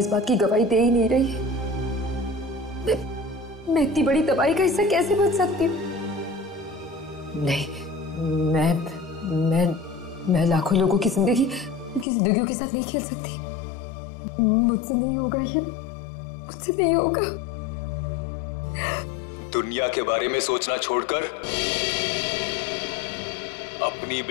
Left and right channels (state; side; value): drops out; right; at 12.1 s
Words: बात की गवाही दे ही नहीं रही है। मैं इतनी बड़ी तबाही का हिस्सा कैसे बन सकती हूँ? नहीं, मैं लाखों लोगों की जिंदगी, उनकी जिंदगियों के साथ नहीं खेल सकती। मुझसे नहीं होगा ये, मुझसे नहीं होगा। दुनिया के बारे में सोचना छोड़कर अपनी